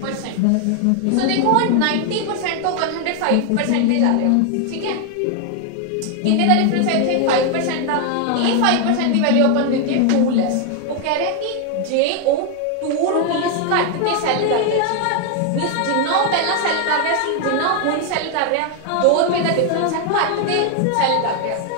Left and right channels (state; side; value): different; both; correlation 0.00